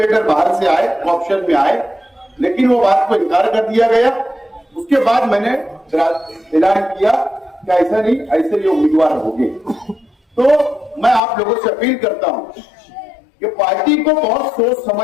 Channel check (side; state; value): right; drops out; at 11.2 s